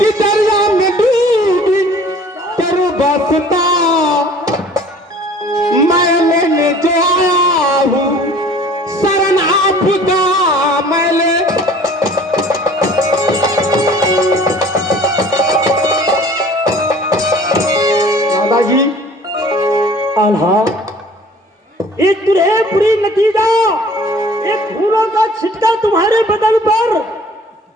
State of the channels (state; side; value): normal; both; correlation 0.50